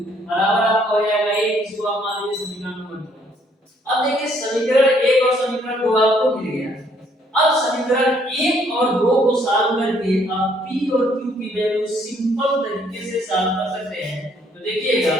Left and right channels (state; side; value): normal; both; correlation 0.66